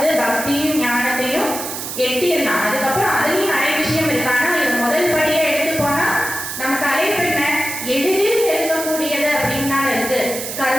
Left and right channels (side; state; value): right; noise; hiss, 6 dB below the sound